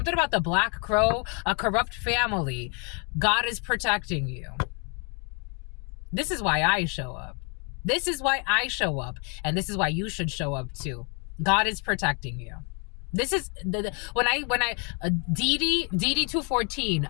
about the black crow, a corrupt family. God is protecting you. This is why I show up. This is why I show up, and this is why you should show up too. God is protecting you. This is when I DD 214,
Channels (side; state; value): right; quieter; 34.7 dB